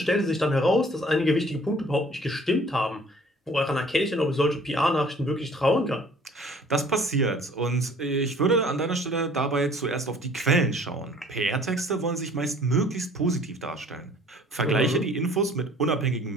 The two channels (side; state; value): both; normal; correlation 0.53